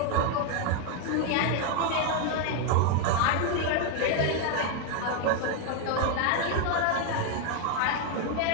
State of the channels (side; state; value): both; different; correlation 0.01